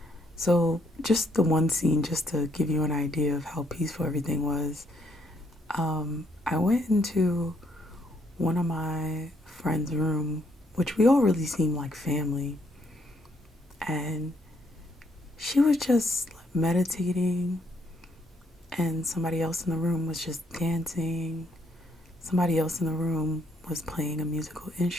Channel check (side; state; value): both; normal; correlation 0.71